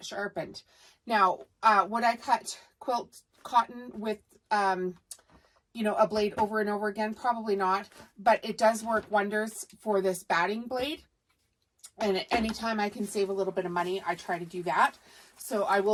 sharpened. Now, would I cut quilt cotton with, you know, a blade over and over again? Probably not, but it does work wonders for this batting blade. And anytime I can save a little bit of money, I try to do that. So I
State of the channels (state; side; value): identical; both; correlation 1.00